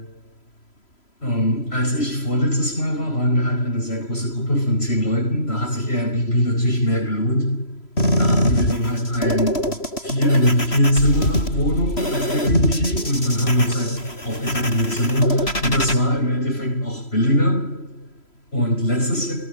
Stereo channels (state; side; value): late; right; 3.0 ms